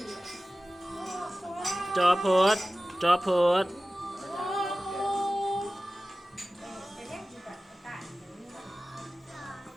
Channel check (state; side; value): normal; both; correlation 0.96